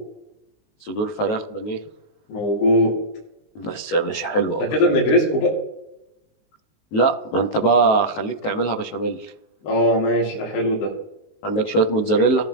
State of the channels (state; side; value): late; right; 19 ms